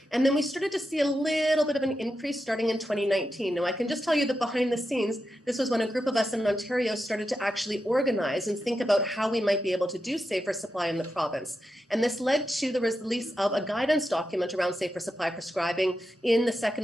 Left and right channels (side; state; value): both; normal; correlation 0.88